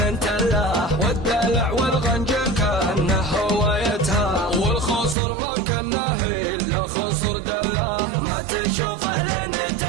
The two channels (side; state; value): left; drops out; at 5.2 s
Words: تله، والدلع والغنج كانه هوايتها، والخصر ما كانه الا خصر دله، ما تشوفه لين